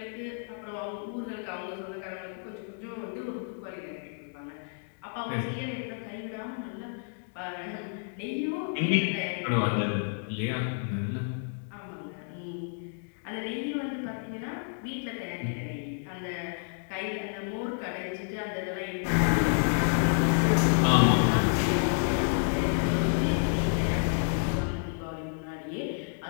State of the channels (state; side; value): silent; right; digital silence